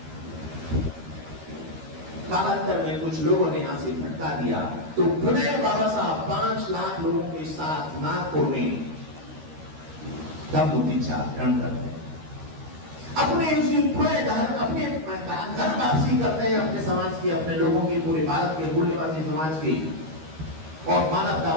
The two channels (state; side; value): late; left; 13 ms